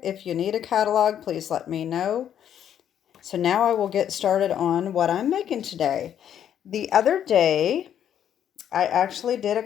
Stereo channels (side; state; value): right; quieter; 9.7 dB